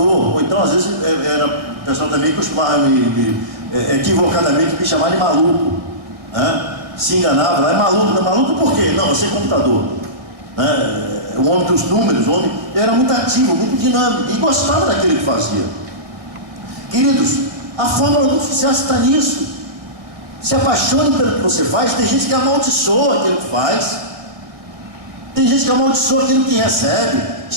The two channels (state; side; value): late; left; 1.7 ms